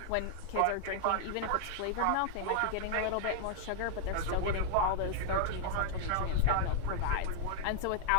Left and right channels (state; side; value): different; both; correlation 0.00